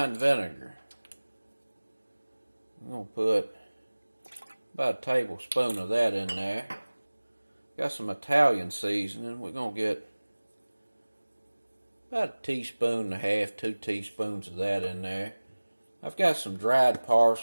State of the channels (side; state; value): both; inverted; correlation -1.00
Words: vinegar. I'm going to put about a tablespoon of that in there. Got some Italian seasoning. We're going to get about a teaspoon and a half, 2 teaspoons of that in there. I've got some dried